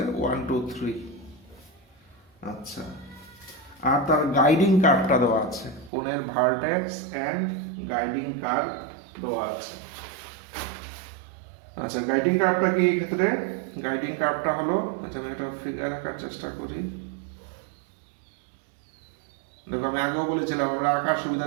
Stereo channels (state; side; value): drops out; left; at 5.9 s